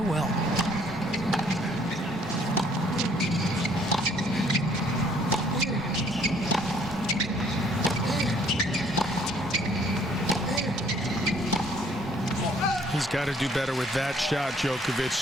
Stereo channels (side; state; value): both; normal; correlation 0.61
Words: He's got to do better with that shot. Djokovic